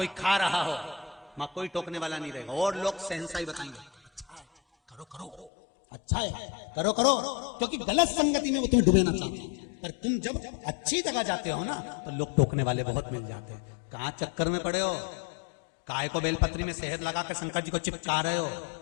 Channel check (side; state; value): right; drops out; at 5.5 s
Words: खा रहा हो, मां कोई टोकने वाला नहीं रहेगा। और लोग सहनशाही बताएंगे, करो करो, अच्छा है, करो करो, क्योंकि गलत संगति में वो तुम्हें डुबेना चाहते हैं। पर तुम जब अच्छी जगह जाते हो ना तो लोग टोकने वाले बहुत मिल जाते हैं। कहां चक्कर में पड़े हो? काय को बेलपत्री में शहद लगा के शंकर जी को चिपका रहे हो?